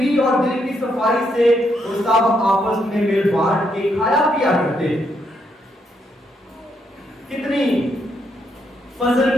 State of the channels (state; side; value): normal; both; correlation 0.76